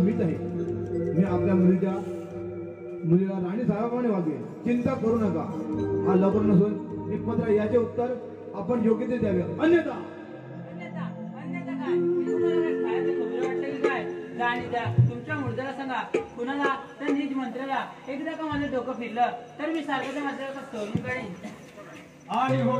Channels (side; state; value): both; identical; correlation 1.00